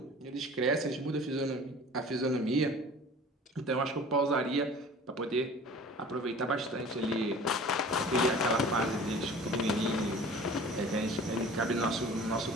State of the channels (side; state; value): both; normal; correlation 0.44